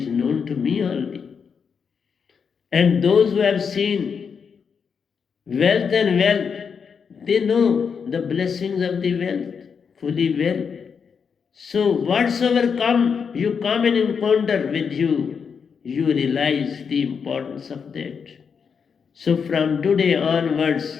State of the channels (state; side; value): quieter; right; 6.3 dB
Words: known to me only. And those who have seen wealth and wealth, they know the blessings of the wealth fully well. So whatsoever you come in encounter with you realize the importance of that. So from today onwards,